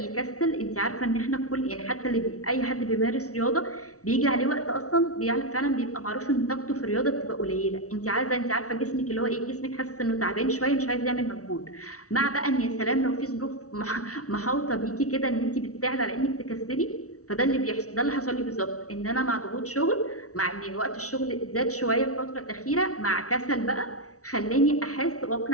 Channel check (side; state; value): right; late; 0.65 ms